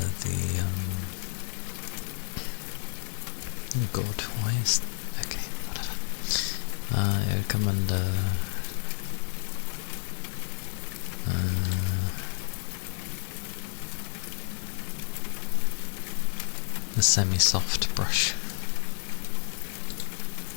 the, oh god, why is... okay, whatever. It would come under... the semi-soft brush.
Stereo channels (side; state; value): right; silent; digital silence